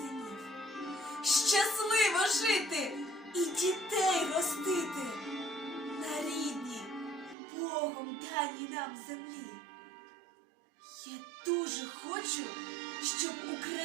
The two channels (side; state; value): left; drops out; at 7.4 s